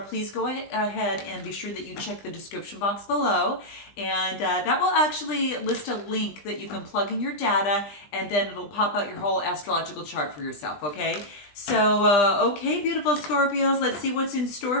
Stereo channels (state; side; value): late; right; 20 ms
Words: go ahead and be sure that you check the description box below. And that will actually list a link that you can plug in your data, and then it'll pop out your whole astrological chart for yourself, okay? So, okay, beautiful Scorpios, let's see what's in